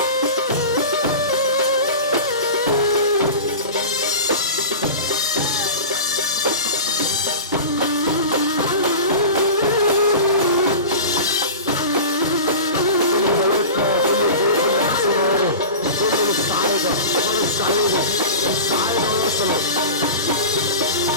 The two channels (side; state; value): both; inverted; correlation -0.32